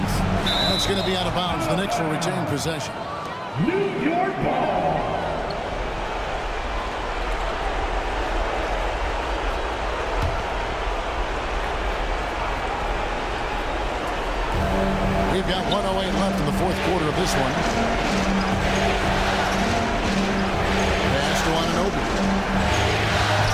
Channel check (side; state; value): both; identical; correlation 1.00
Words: That's going to be out of bounds. The Knicks will retain possession. New York ball. We've got 1:08 left in the fourth quarter of this one. Pass to Anunoby.